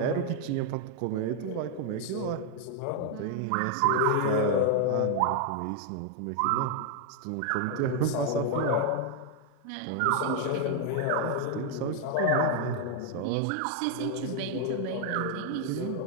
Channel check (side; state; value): both; different; correlation 0.00